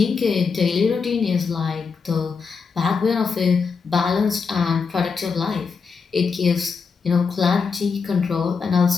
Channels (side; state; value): right; quieter; 5.3 dB